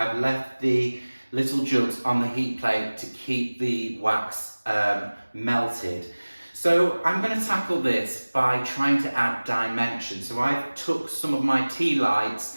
left the little jugs on the heat plate to keep the wax melted. So I'm going to tackle this by trying to add dimension. So I took some of my tea lights,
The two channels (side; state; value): both; inverted; correlation -1.00